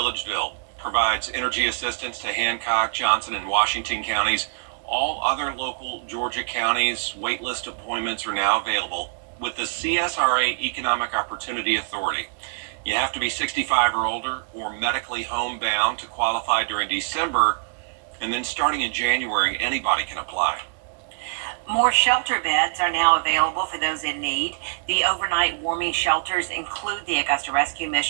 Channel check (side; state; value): left; silent; 62 dB below the other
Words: provides energy assistance to Hancock, Johnson, and Washington counties. All other local Georgia counties, waitlist appointments are now available with the CSRA Economic Opportunity Authority. You have to be 65 or older or medically homebound to qualify during December, and then starting in January, anybody can apply. More shelter beds are now available for those in need. The overnight warming shelters include the Augusta Rescue